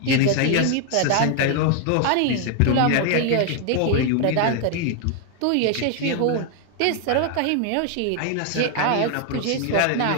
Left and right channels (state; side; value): different; both; correlation 0.00